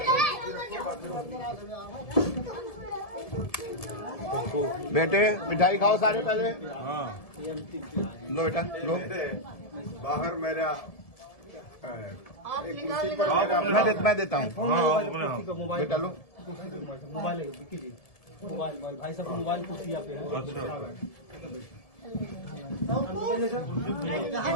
बेटे मिठाई खाओ सारे पहले। हाँ लो बेटा लो। बाहर मेरा मैं देता हूँ मोबाइल बेटा लो। मोबाइल कीजिए, मोबाइल भाई साहब मोबाइल कुर्सी पे है।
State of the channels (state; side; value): late; right; 1.7 ms